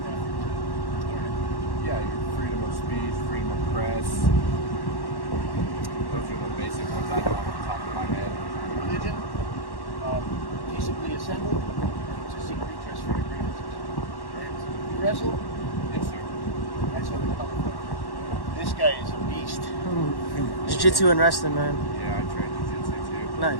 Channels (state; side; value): late; right; 1.1 ms